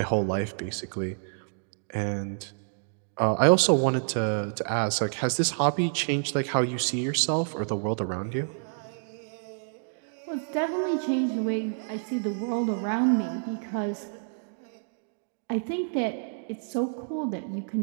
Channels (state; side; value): silent; left; digital silence